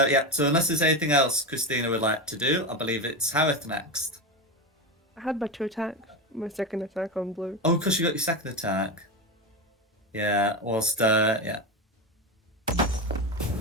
So unless there's anything else Christina would like to do, I believe it's Harith next. I had my 2 attacks. My second attack on blue. Oh, because you got your second attack. Yeah. Whilst yeah.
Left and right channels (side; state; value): both; normal; correlation 0.17